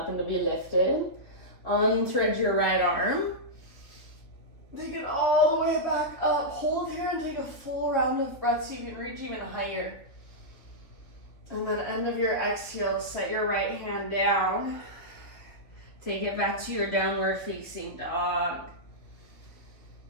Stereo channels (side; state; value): right; late; 3.4 ms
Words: to be lifted. Unthread your right arm. Take it all the way back up. Hold here and take a full round of breath so you can reach even higher. And then end of your exhale, set your right hand down. Take it back to your downward facing dog.